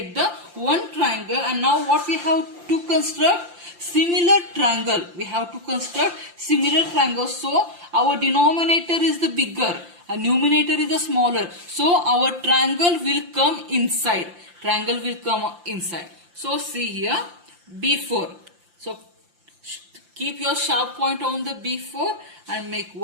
the one triangle. And now what we have to construct? Similar triangle. We have to construct similar triangle. So our denominator is the bigger and numerator is the smaller. So our triangle will come inside. Triangle will come inside. So see here, B4. So keep your sharp point on the B4 and make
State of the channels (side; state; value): left; late; 5.8 ms